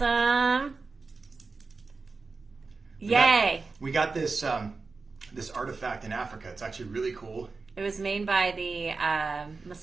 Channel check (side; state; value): left; quieter; 4.2 dB